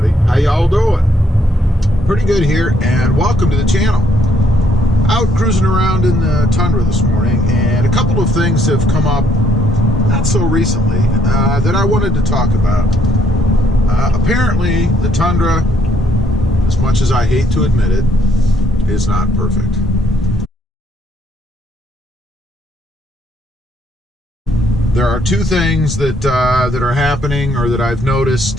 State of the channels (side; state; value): both; normal; correlation 0.69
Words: How y'all doing? Pretty good here, and welcome to the channel. Out cruising around in the Tundra this morning, and a couple of things have come up not so recently that I wanted to talk about. Apparently the Tundra, as much as I hate to admit it, is not perfect. There are two things that are happening, or that I've